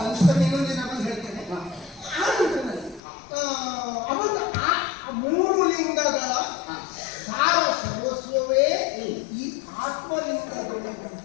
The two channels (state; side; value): drops out; right; at 3.0 s